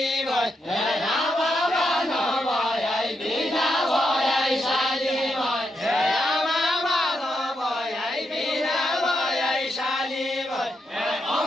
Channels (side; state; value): both; normal; correlation 0.82